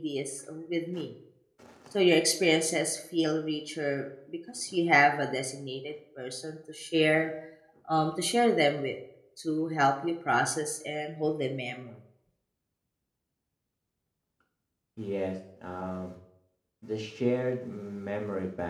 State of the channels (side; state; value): both; identical; correlation 1.00